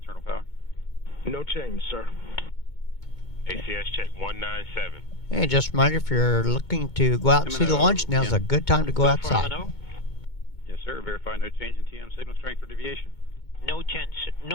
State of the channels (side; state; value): right; late; 2.2 ms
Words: power. No change, sir. ACS check 197. And just a reminder, if you're looking to go out and see the launch, now's a good time to go outside. Yes, sir. Verify no change in TM signal strength or deviation. No